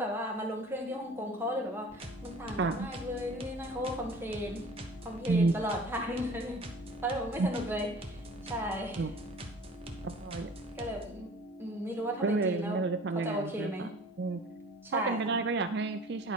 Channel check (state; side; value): normal; both; correlation 0.46